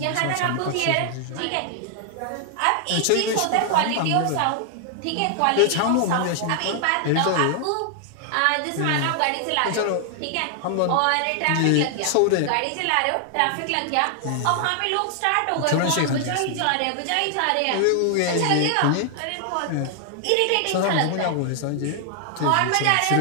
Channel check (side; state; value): both; different; correlation 0.00